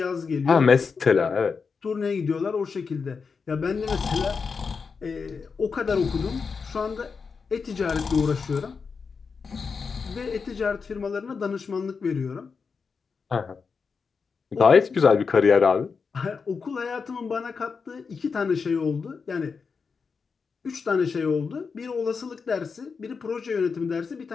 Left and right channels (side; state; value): right; quieter; 5.3 dB